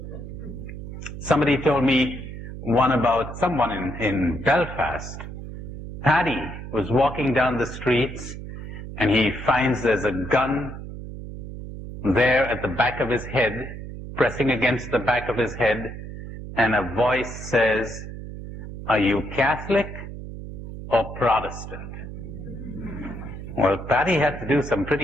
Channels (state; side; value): noise; right; hum, 10 dB below the sound